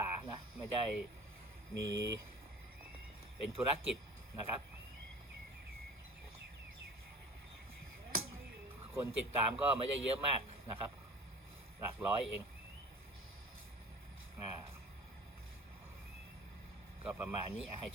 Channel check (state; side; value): normal; both; correlation 0.41